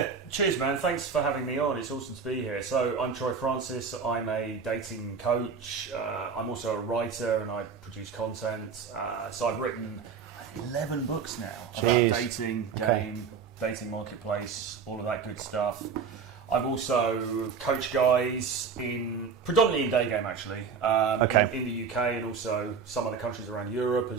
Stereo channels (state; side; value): quieter; left; 5.9 dB